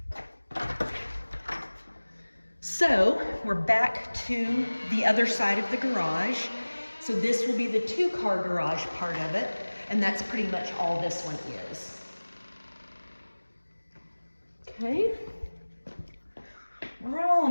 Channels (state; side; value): inverted; both; correlation -1.00